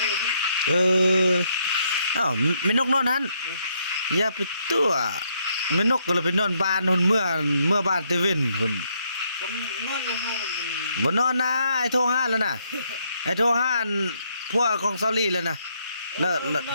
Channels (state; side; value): inverted; both; correlation -0.74